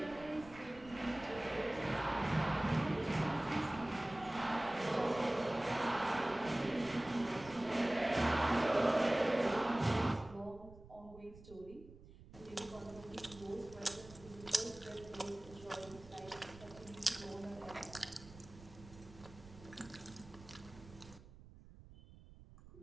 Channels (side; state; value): right; noise; rumble, 19 dB below the sound